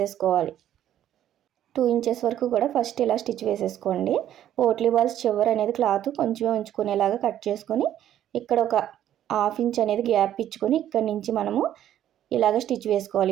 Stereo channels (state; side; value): quieter; left; 11.4 dB